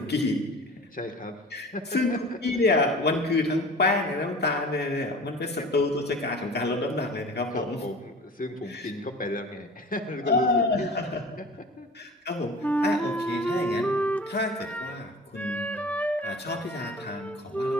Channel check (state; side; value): normal; both; correlation 0.40